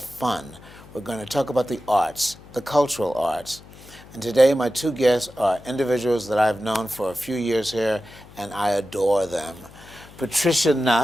fun. We're going to talk about the arts, the cultural arts. And today my two guests are individuals that I've known for a few years here, and I adore them. Patricia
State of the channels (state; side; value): noise; left; hum, 21 dB below the sound